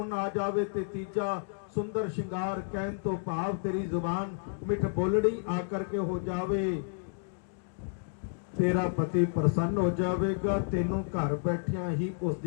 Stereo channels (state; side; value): silent; right; digital silence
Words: आ जावे, ते तीजा सुंदर श्रृंगार कहन तो भाव तेरी जुबान मिठ बोलड़ी आकर के हो जावे, तेरा पति प्रसन्न हो जाएगा, तेनू घर बैठिया ही